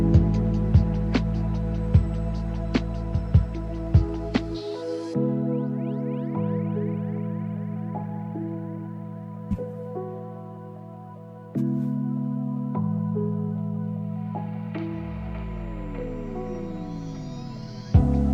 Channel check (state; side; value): identical; both; correlation 1.00